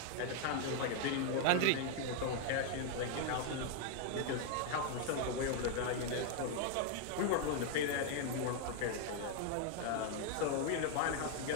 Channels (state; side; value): different; both; correlation 0.00